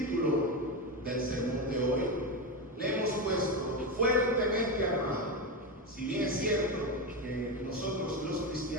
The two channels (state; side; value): normal; both; correlation 0.14